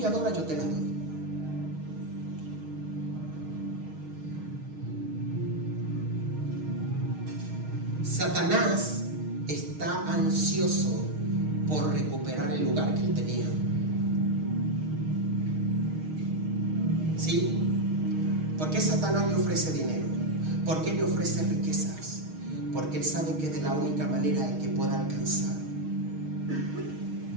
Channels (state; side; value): late; left; 6.4 ms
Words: adoras, yo te las doy. Satanás está ansioso por recuperar el lugar que él tenía. ¿Sí? ¿Por qué Satanás le ofrece dinero? ¿Por qué le ofrece riquezas? Porque él sabe que de la única manera en que pueda alcanzar.